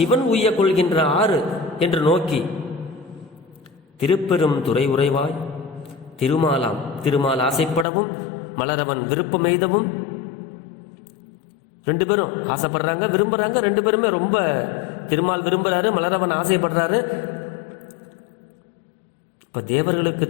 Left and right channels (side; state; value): right; drops out; at 7.9 s